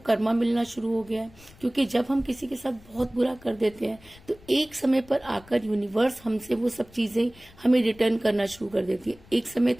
कर्मा मिलना शुरू हो गया है, क्योंकि जब हम किसी के साथ बहुत बुरा कर देते हैं तो एक समय पर आकर यूनिवर्स हमसे वो सब चीजें हमें रिटर्न करना शुरू कर देती है। एक समय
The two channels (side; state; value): left; noise; rumble, 24 dB below the sound